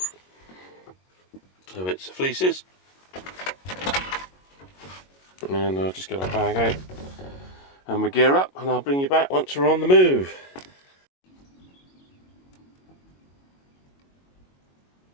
so it's fleeces, and I'll just get our bag out and we gear up, and I'll bring you back once we're on the move.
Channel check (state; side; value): late; right; 22 ms